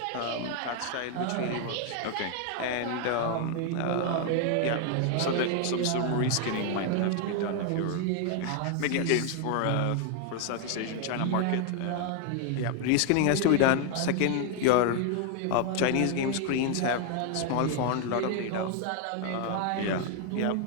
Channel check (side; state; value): both; different; correlation 0.00